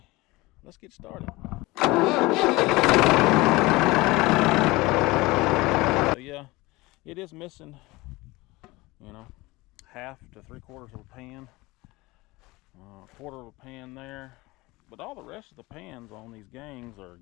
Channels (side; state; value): right; quieter; 21.5 dB